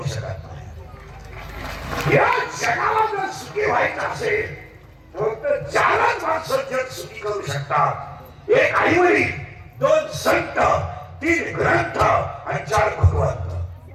शकत नाही. या जगाला जर सुखी व्हायचं असेल फक्त 4च माणसं जग सुखी करू शकतात. 1 आईवडील, 2 संत, 3 ग्रंथ आणि 4 भगवंत.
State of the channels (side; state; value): both; identical; correlation 1.00